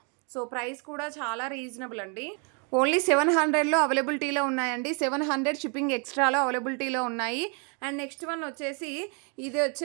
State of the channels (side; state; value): left; quieter; 36.7 dB